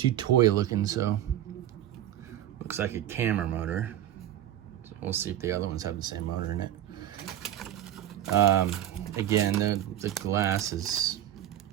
toy looking, so looks like a camera motor. So we'll see if the other ones have the same motor in it. Again, the glass is,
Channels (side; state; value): left; quieter; 12.0 dB